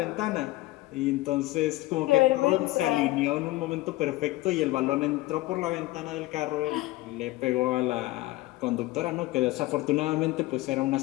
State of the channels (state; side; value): quieter; right; 18.6 dB